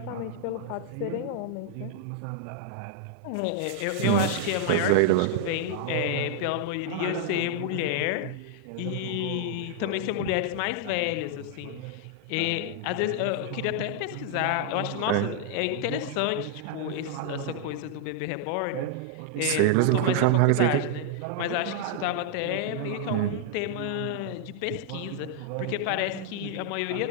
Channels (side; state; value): both; different; correlation 0.00